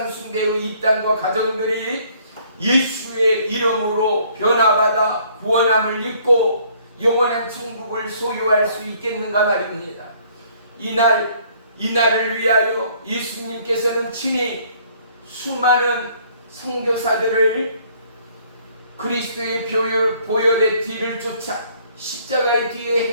숭배의 입단과 가정들이 예수의 이름으로 변화받아 구원함을 입고 영원한 천국을 소유할 수 있겠는가 말입니다. 이날을 위하여 예수님께서는 친히 수많은 선교사들을 그리스도의 보혈의 뒤를 쫓아 십자가의 뒤에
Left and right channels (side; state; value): both; inverted; correlation -0.61